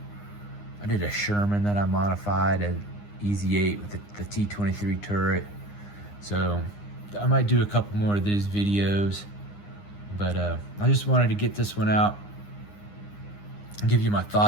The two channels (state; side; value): late; right; 9.8 ms